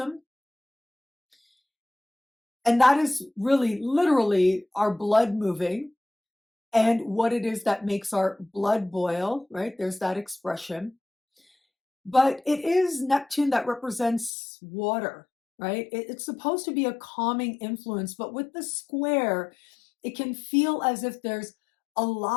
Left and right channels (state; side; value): drops out; right; at 14.3 s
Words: And that is really literally our blood moving and what it is that makes our blood boil, right? There's that expression. But it is Neptune that represents water, right? It's supposed to be a calming influence, but with the square, it can feel as if there's a